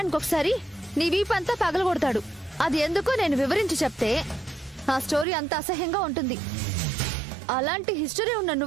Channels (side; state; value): left; drops out; at 5.2 s